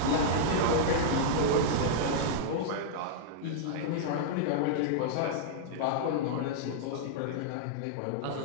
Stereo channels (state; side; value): different; both; correlation -0.02